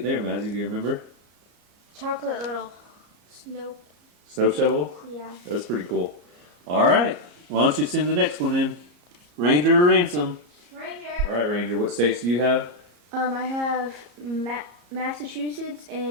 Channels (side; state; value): left; late; 34 ms